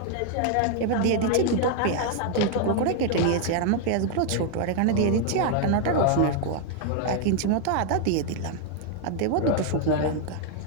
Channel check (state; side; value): different; both; correlation 0.00